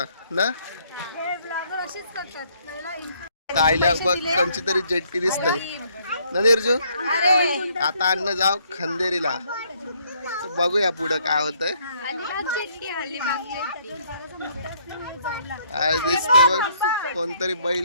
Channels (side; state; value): both; inverted; correlation -0.67